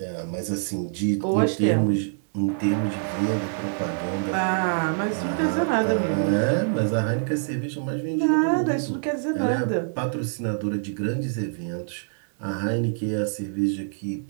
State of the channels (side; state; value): left; silent; digital silence